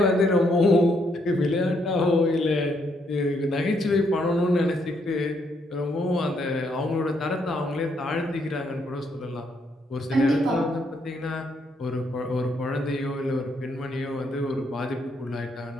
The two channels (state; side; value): normal; both; correlation 0.74